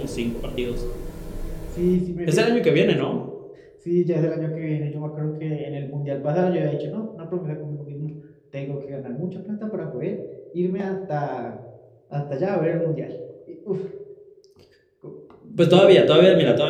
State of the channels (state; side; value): identical; both; correlation 1.00